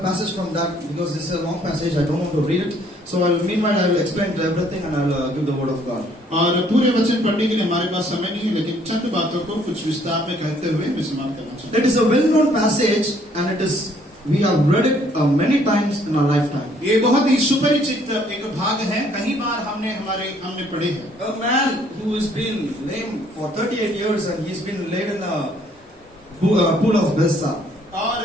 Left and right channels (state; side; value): normal; both; correlation 0.63